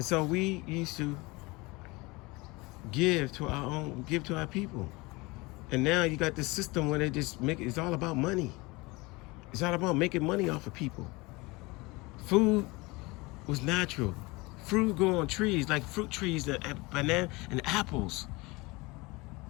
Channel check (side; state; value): right; quieter; 24.0 dB